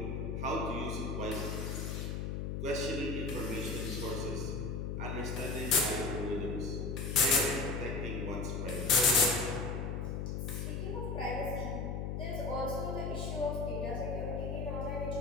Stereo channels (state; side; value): noise; left; hum, 2 dB below the sound